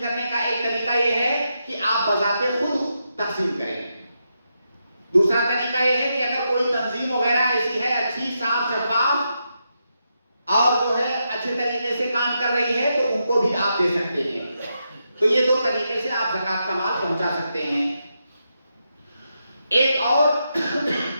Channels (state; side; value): inverted; both; correlation -0.84